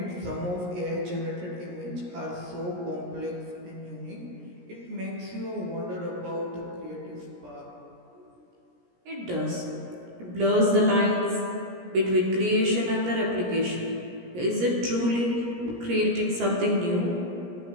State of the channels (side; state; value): left; late; 17 ms